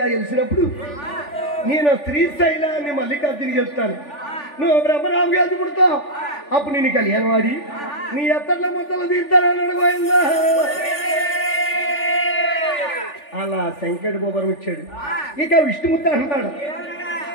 గెలిచినప్పుడు నేను శ్రీశైలాన్ని మల్లికార్జుని గెలుస్తాను. నువ్వు బ్రహ్మరావు గారికి పుడతావు, అప్పుడు నేను కళ్యాణం ఆడి నీ ఎత్తట్ల మొత్తలు తీర్తానని అడగబోయిందా. అలా శంకరుడు గోపురం వచ్చాడు. ఇక విష్ణుమూర్తి అంటాడు,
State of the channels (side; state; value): right; late; 3.4 ms